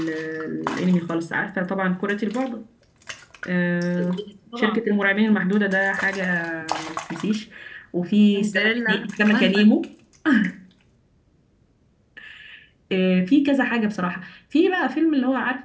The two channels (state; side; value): identical; both; correlation 1.00